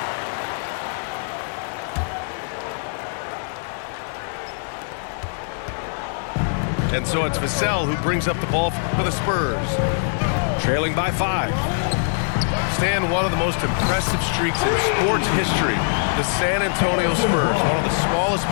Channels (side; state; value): right; silent; digital silence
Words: And so it's Vassell who brings up the ball for the Spurs. Trailing by 5. stand one of the most impressive streaks in sports history. The San Antonio Spurs, one of the smallest